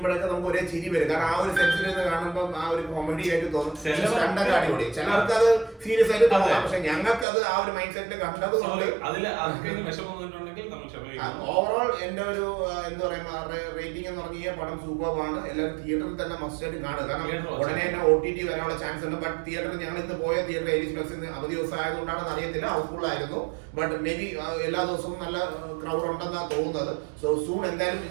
നമുക്ക് ഒരേ ചിരി വരും, കാരണം ആ ഒരു സെൻസിൽ നിന്ന് കാണുമ്പോൾ ആ ഒരു കോമഡി ആയിട്ട് തോന്നും. സ്റ്റണ്ടൊക്കെ അടിപൊളി. ചിലർക്ക് അത് സീരിയസ് ആയിട്ട് തോന്നാം, പക്ഷെ ഞങ്ങൾക്ക് അത് ആ ഒരു മൈൻഡ് സെറ്റിൽ കണ്ടത് കൊണ്ട് ഓവറോൾ എന്റെ ഒരു എന്താ പറയാ റേറ്റിംഗ് എന്ന് പറഞ്ഞ പടം സൂപ്പറാണ്. എല്ലാവരും തിയേറ്ററിൽ തന്നെ മസ്റ്റ് ആയിട്ട് കാണുക. കാരണം ഉടനെ തന്നെ OTT വരാനുള്ള ചാൻസ് ഉണ്ട്. ബട്ട് തിയേറ്ററിൽ ഞങ്ങൾ ഇന്ന് പോയ തിയേറ്റർ ഏരീസ് പ്ലസ് അവധി ദിവസം ആയതുകൊണ്ടാണെന്ന് അറിയത്തില്ല, ഹൗസ്ഫുൾ ആയിരുന്നു. ബട്ട് മേ ബി എല്ലാ ദിവസവും നല്ല ക്രൗഡ് ഉണ്ടെന്നാണ് തോന്നുന്നത്. സോ സൂൺ എന്തായാലും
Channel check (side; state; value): left; drops out; at 7.2 s